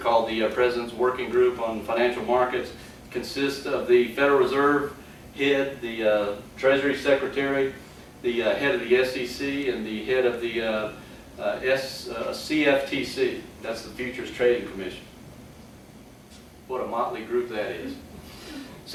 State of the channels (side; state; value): both; identical; correlation 1.00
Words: the President's Working Group on Financial Markets. It consists of the Federal Reserve head, the Treasury Secretary, the head of the SEC, and the head of the CFTC. That's the Futures Trading Commission. What a motley group that is.